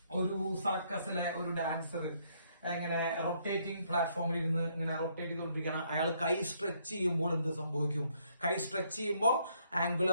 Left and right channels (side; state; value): both; inverted; correlation -0.70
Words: ഒരു സർക്കസിലെ ഒരു ഡാൻസർ ഇങ്ങനെ റൊട്ടേറ്റിംഗ് പ്ലാറ്റ്ഫോമിൽ ഇരുന്ന് ഇങ്ങനെ റൊട്ടേറ്റ് ചെയ്തുകൊണ്ടിരിക്കുകയാണ്. അയാൾ കൈ സ്ട്രെച്ച് ചെയ്യുമ്പോൾ എന്ത് സംഭവിക്കും? കൈ സ്ട്രെച്ച് ചെയ്യുമ്പോൾ